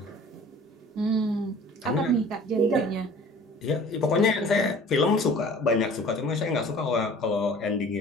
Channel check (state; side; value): normal; both; correlation 0.47